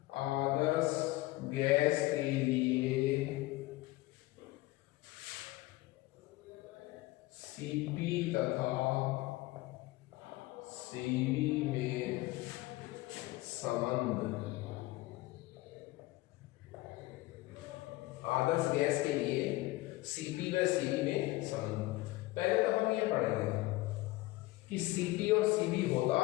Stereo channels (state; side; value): quieter; right; 19.4 dB